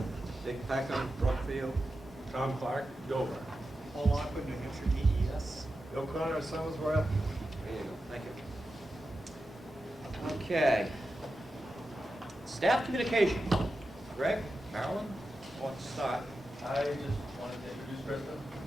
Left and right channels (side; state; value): both; normal; correlation 0.91